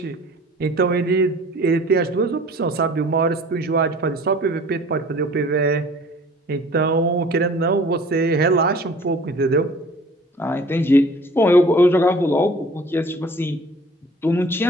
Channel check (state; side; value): normal; both; correlation 0.49